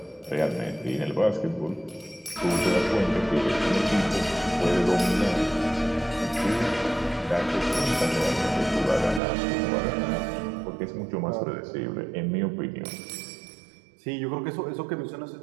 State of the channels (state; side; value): drops out; left; at 9.2 s